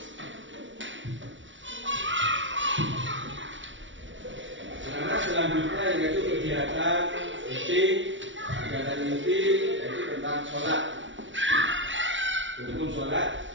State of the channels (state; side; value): late; left; 0.55 ms